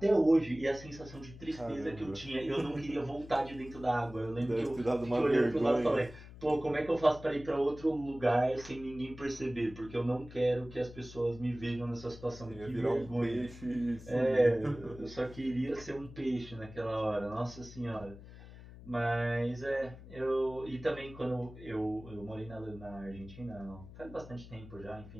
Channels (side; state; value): left; noise; hum, 16 dB below the sound